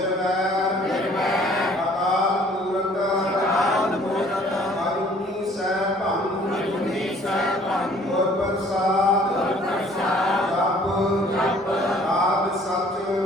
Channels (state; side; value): normal; both; correlation 0.56